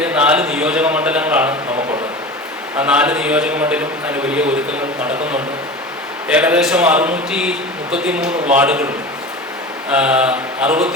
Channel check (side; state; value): both; normal; correlation 0.32